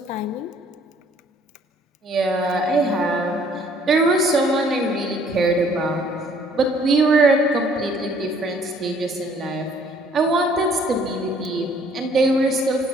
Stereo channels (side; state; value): both; normal; correlation 0.60